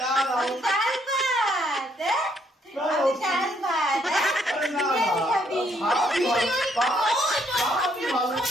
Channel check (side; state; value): both; normal; correlation 0.70